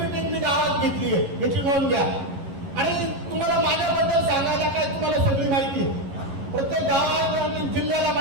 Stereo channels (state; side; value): late; left; 11 ms